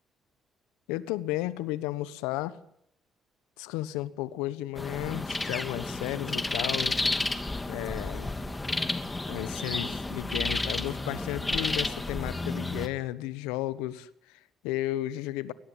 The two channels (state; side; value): quieter; right; 5.6 dB